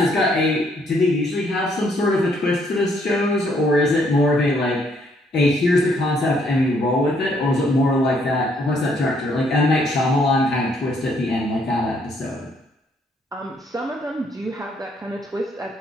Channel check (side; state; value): both; normal; correlation 0.69